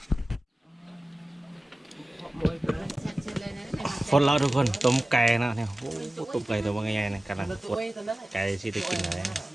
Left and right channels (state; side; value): normal; both; correlation 0.96